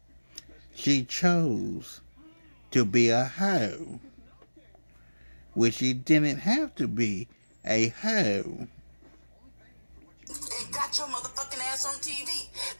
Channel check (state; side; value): inverted; both; correlation -1.00